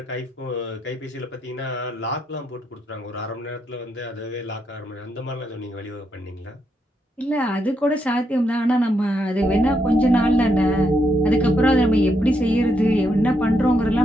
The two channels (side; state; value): both; normal; correlation 0.79